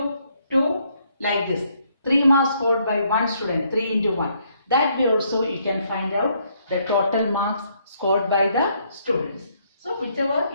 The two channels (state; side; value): inverted; both; correlation -0.70